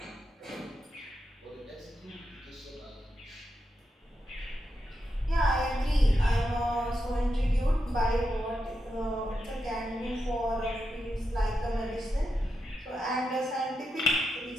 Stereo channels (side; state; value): both; normal; correlation 0.86